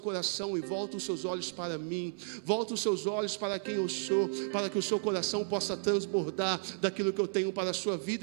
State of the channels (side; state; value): left; silent; digital silence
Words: e volta os seus olhos para mim. Volta os seus olhos para quem eu sou, para que o seu coração possa transbordar daquilo que eu tenho para a sua